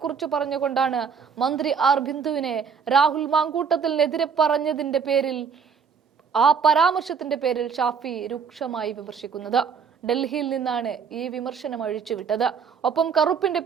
പറഞ്ഞുകൊണ്ടാണ് മന്ത്രി ആർ ബിന്ദുവിനെ രാഹുൽ മാങ്കൂട്ടത്തിനെതിരെ പറഞ്ഞതിന്റെ പേരിൽ, ആ പരാമർശത്തിന്റെ പേരിൽ ഷാഫി രൂക്ഷമായി വിമർശിക്കുന്നത്. ഡൽഹിയിൽ നിന്നാണ് ഈ വിമർശനം അഴിച്ചുവിട്ടത്. ഒപ്പം കറുപ്പിന്റെ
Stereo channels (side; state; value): left; quieter; 6.3 dB